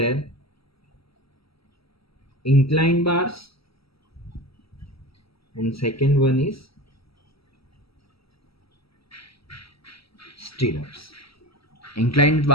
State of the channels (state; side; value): late; right; 0.76 ms